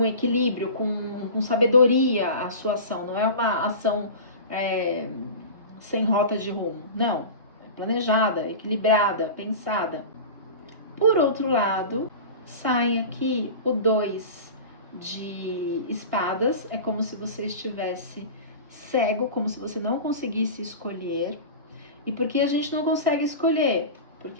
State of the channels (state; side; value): inverted; both; correlation -0.32